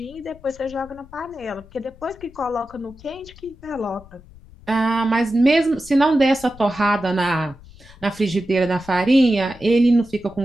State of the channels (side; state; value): left; noise; rumble, 22 dB below the sound